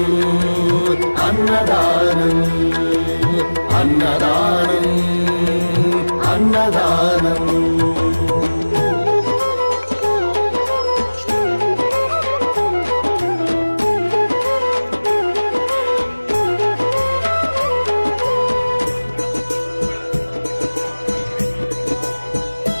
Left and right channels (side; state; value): both; inverted; correlation -1.00